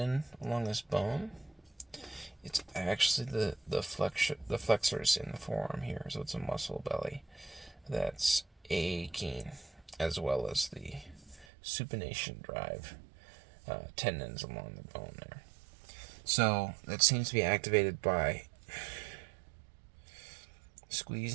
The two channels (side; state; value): left; drops out; at 11.5 s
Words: along this bone. It's actually the flexors in the forearm here. So it's a muscle belly that's aching, as well as the supination drive tendons along the bone there. So that seems to be activated by